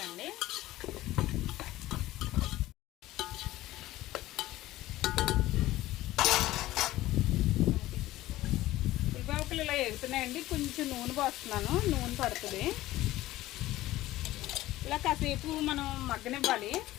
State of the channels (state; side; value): quieter; right; 16.3 dB